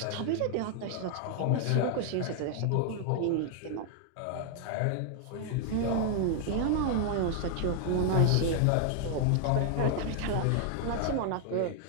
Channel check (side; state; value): both; different; correlation 0.00